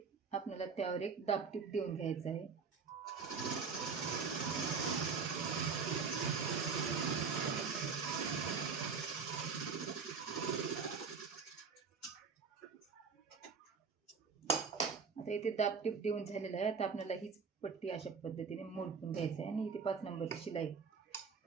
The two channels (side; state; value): left; quieter; 5.4 dB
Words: आपल्याला त्यावर एक दाबटीप देऊन घ्यायचं आहे. आता इथे दाबटीप देऊन झालेलं आहे. आता आपल्याला हीच पट्टी अशा पद्धतीने मोडून घ्यायचं आहे आणि इथे 5 नंबरची शिलाई